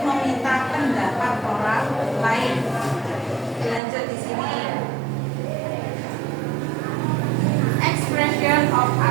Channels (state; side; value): drops out; left; at 3.8 s